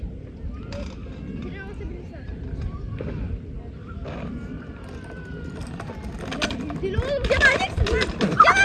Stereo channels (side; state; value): both; identical; correlation 1.00